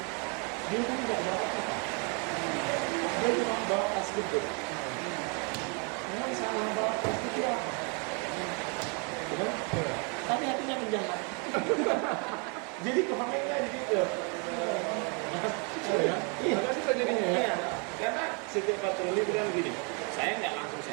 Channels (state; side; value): quieter; left; 35.6 dB